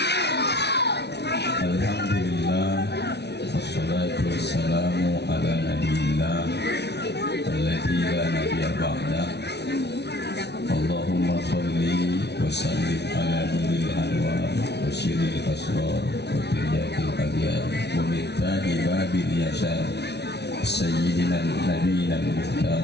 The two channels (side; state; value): right; late; 0.49 ms